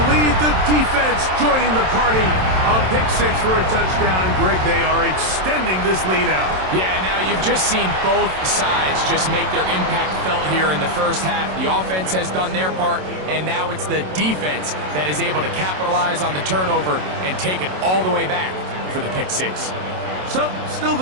lead. The defense joining the party. A pick 6 for a touchdown. Greg, they are extending this lead out. Yeah, now you've just seen both sides just make their impact felt here in the first half. The offense has done their part, and now it's the defense that is able to capitalize on the turnover and take it all the way back for the pick 6. So, still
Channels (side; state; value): left; late; 27 ms